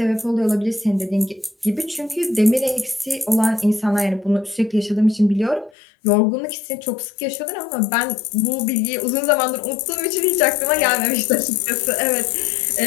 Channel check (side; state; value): right; drops out; at 5.7 s